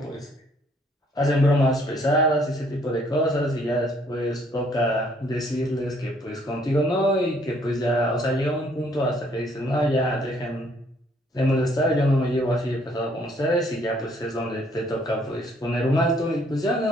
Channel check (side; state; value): both; normal; correlation 0.64